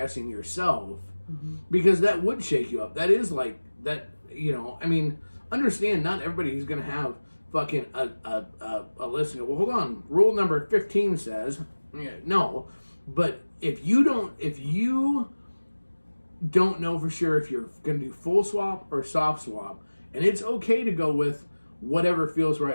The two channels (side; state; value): both; inverted; correlation -1.00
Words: yourself, mm-hmm. because that would shake you up. That is like that, I mean, understand not everybody is going to have fucking a list and go, well, hold on, rule number 15 says, no. But if you don't know for sure if you're going to do full swap or soft swap, and it's okay to go with whatever feels